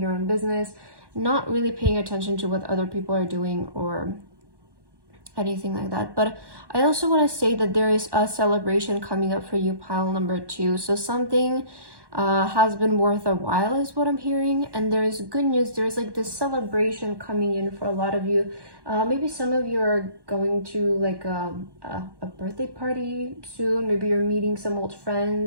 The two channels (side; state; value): left; late; 1.1 ms